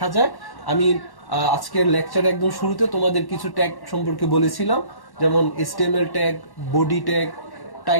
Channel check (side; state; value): right; late; 1.1 ms